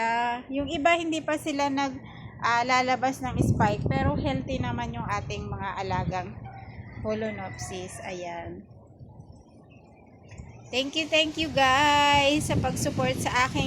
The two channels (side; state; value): both; identical; correlation 1.00